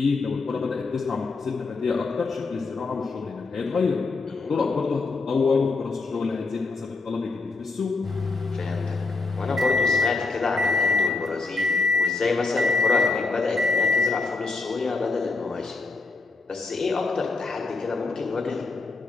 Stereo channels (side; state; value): right; quieter; 3.8 dB